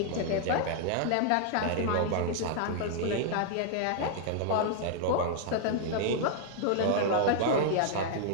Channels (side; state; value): both; different; correlation -0.01